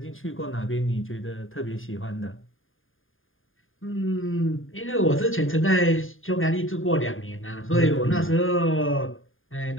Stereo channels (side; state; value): right; late; 0.59 ms